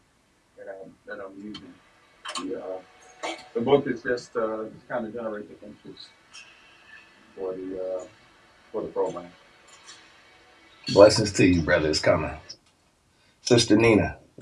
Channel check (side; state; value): both; identical; correlation 1.00